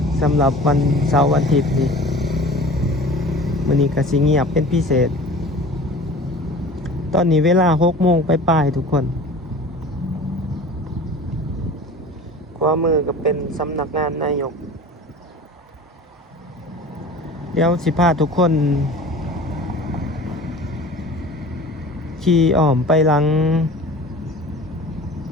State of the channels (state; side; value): normal; both; correlation 0.40